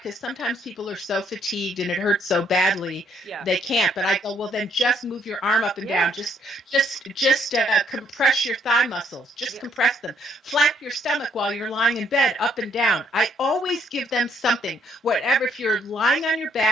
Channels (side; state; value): both; normal; correlation 0.68